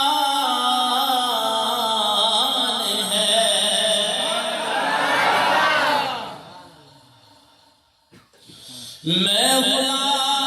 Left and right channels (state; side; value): identical; both; correlation 1.00